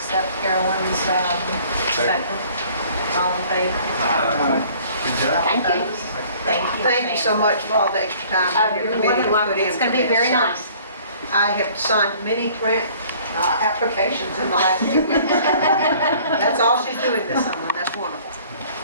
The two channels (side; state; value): both; inverted; correlation -0.54